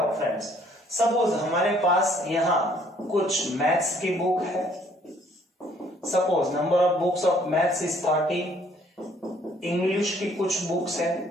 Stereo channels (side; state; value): both; normal; correlation 0.61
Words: हूं फ्रेंड्स। सपोज हमारे पास यहां कुछ मैथ्स की बुक है। Suppose number of books of maths is 30, English की कुछ बुक्स